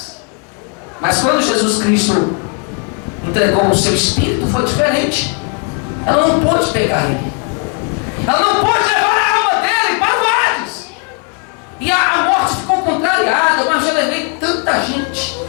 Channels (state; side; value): quieter; right; 34.3 dB